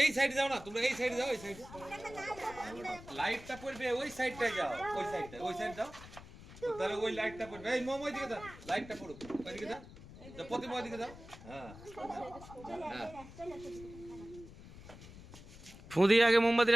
এই সাইডে যাও না, তোমরা এই সাইডে যাও, এই সাইডে লাইটটা পড়বে, ওই সাইডটা যাও, ওই সাইডটা, ওই সাইড যাও। তাহলে ওই লাইটটা পড়বে, এই মোম ওইদিকে দাও, লাইটটা পড়ুক ওইদিকে দাও, প্রতিমা ওইদিকে দাও। হ্যাঁ হ্যাঁ, ফু দিয়ে আগে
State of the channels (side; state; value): left; noise; rumble, 17 dB below the sound